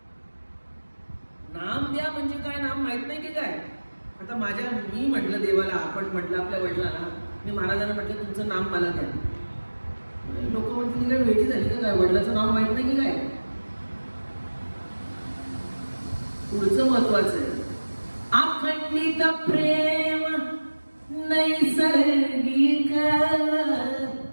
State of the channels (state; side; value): inverted; both; correlation -1.00